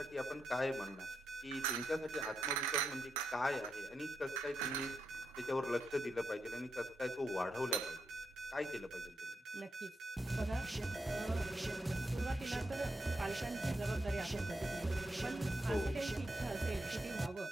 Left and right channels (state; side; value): normal; both; correlation 0.84